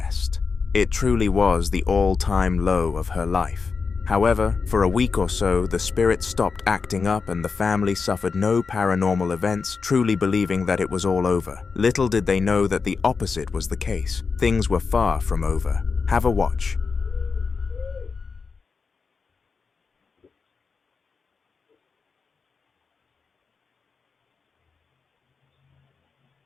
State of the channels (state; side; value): quieter; right; 5.0 dB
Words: It truly was the all-time low of her life. However, for a week or so, the spirit stopped acting up and the family suffered no paranormal events, truly believing that it was all over. Little did they know that the opposite was the case. Things were far from over. Have a watch.